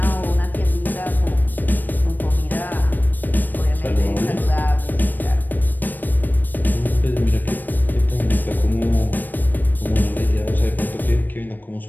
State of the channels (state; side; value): late; right; 0.090 ms